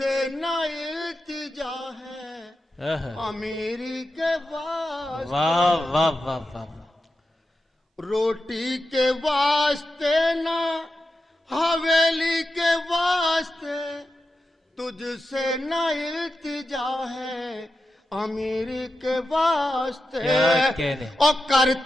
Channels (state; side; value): normal; both; correlation 0.90